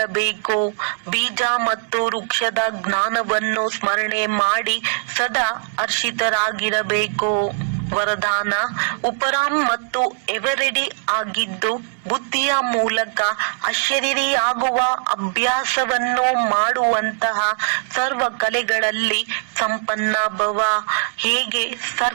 ಬೀಜ ಮತ್ತು ವೃಕ್ಷದ ಜ್ಞಾನವನ್ನು ಸ್ಮರಣೆ ಮಾಡಿ ಸದಾ ಹರ್ಷಿತರಾಗಿರಬೇಕು. ವರದಾನ: ಉಪರಾಮ್ ಮತ್ತು ಎವರೆಡಿ ಆಗಿದ್ದು ಬುದ್ಧಿಯ ಮೂಲಕ ಅಶರೀರಿಯಾಗುವ ಅಭ್ಯಾಸವನ್ನು ಮಾಡುವಂತಹ ಸರ್ವ ಕಲೆಗಳಲ್ಲಿ ಸಂಪನ್ನ ಭವ. ಹೇಗೆ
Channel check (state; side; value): silent; left; 65 dB below the other